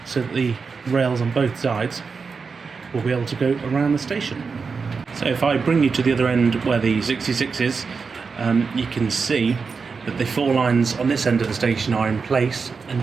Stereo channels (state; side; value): quieter; left; 5.1 dB